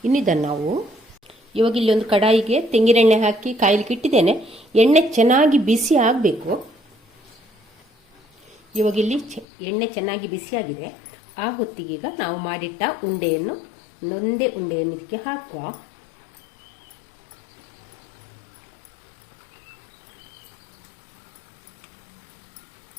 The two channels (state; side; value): drops out; right; at 9.5 s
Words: ಇನ್ನಿದನ್ನು ನಾವು ಇವಾಗ ಇಲ್ಲಿ ಒಂದು ಕಡಾಯಿಗೆ ತೆಂಗಿನೆಣ್ಣೆ ಹಾಕಿ ಕಾಯಲಿಕ್ಕೆ ಇಟ್ಟಿದ್ದೇನೆ. ಎಣ್ಣೆ ಚೆನ್ನಾಗಿ ಬಿಸಿ ಆಗಬೇಕು. ಇವಾಗ ಇಲ್ಲಿ ಎಣ್ಣೆ ಚೆನ್ನಾಗಿ ಬಿಸಿಯಾಗಿದೆ. ಆ ಹೊತ್ತಿಗೀಗ ನಾವು ಮಾಡಿಟ್ಟ ಉಂಡೆಯನ್ನು ಒಂದೇ ಉಂಡೆಯನ್ನು ಇದಕ್ಕೆ ಹಾಕುವ.